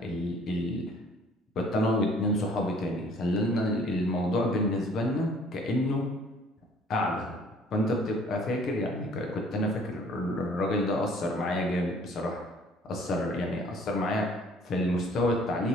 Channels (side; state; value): both; normal; correlation 0.56